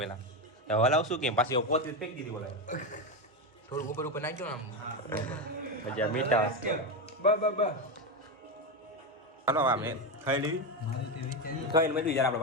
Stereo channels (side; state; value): both; normal; correlation 0.12